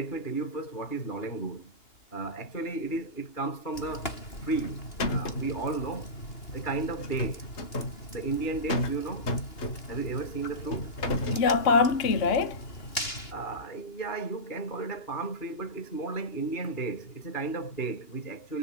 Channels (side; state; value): right; late; 2.8 ms